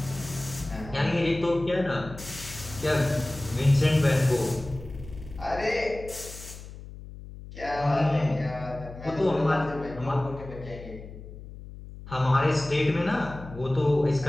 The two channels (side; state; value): left; noise; hum, 14 dB below the sound